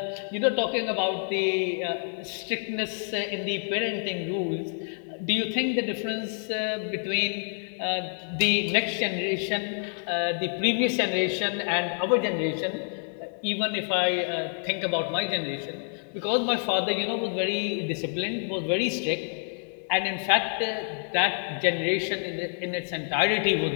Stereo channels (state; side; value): silent; right; 60 dB below the other